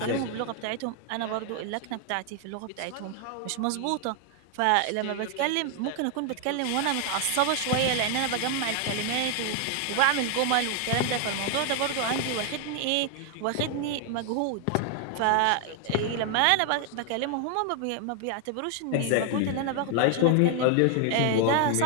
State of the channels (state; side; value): different; both; correlation 0.00